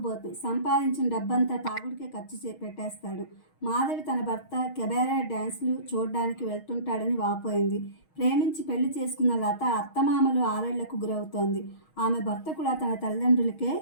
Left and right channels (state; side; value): late; right; 6.4 ms